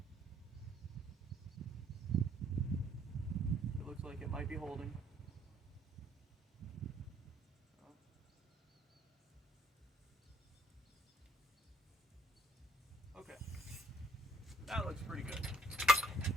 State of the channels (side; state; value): both; normal; correlation 0.66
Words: It looks like it might be holding. Okay, that looks pretty good.